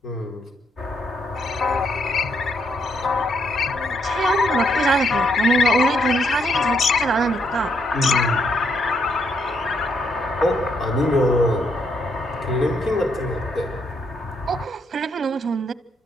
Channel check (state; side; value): normal; both; correlation 0.75